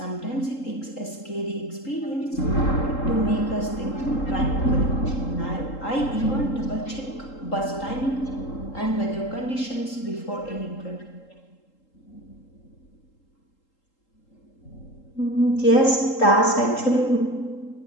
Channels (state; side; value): late; right; 3.8 ms